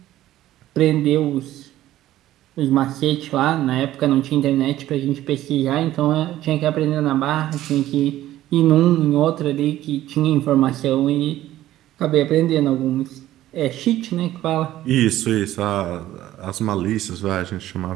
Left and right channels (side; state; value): left; quieter; 14.1 dB